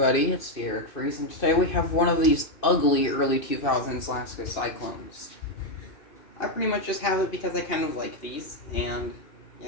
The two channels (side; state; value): right; late; 2.5 ms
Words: it's the Eric Freeze, and today we have one of these ugly early 2000s lasko cyclones. I pretty much just have it because I kind of like these, and